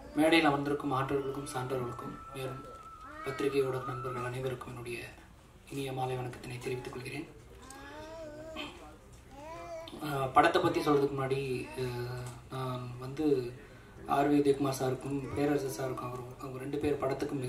மேடையில் அமர்ந்திருக்கும் ஆற்றவர்களுக்கும் சான்றவர்களுக்கும் மேலும் பத்திரிகையோட நண்பர்கள் அனைவருக்கும் என்னுடைய இனிய மாலை வணக்கத்தினை தெரிவித்துக் கொள்கிறேன். படத்தை பற்றி சொல்கிறதுக்கு முன்னாடி நான் வந்து ஆர் உதயகுமார் சாருக்கும் பேரரசு சாருக்கும் அவங்க 2 பேர் படத்துக்கும்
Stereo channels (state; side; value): identical; both; correlation 1.00